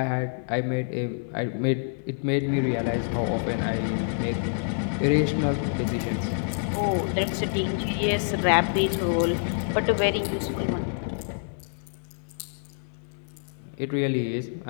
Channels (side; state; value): right; silent; 60 dB below the other